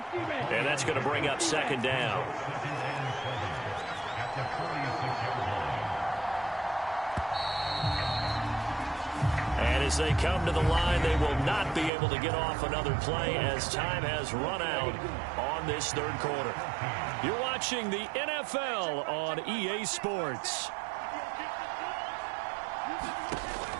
And that's going to bring up 2nd down. And as they come to the line, they will not be able to get off another play as time has run out on this 3rd quarter. You're watching the NFL on EA Sports.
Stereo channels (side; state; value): left; drops out; at 11.9 s